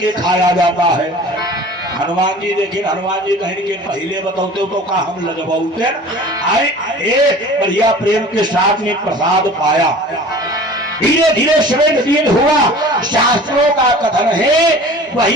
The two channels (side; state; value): both; normal; correlation 0.43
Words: खाया जाता है। हनुमान जी देखिए हनुमान जी कहीं के पहले बताते तो का हम लगवाते आए बढ़िया प्रेम के साथ में प्रसाद पाया। धीरे धीरे समय दिन हुआ शास्त्रों का कथन है